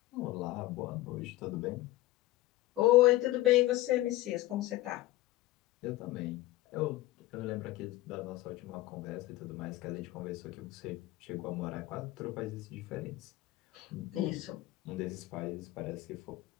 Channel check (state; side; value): quieter; right; 17.3 dB